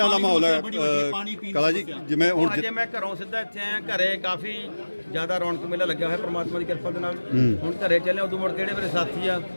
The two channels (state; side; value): inverted; both; correlation -1.00